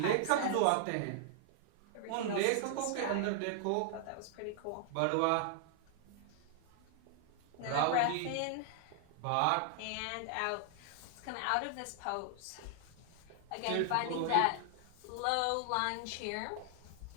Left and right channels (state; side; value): different; both; correlation 0.00